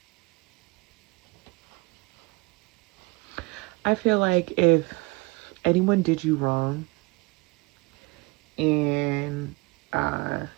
I feel like if anyone did you wrong, and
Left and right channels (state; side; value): quieter; left; 25.4 dB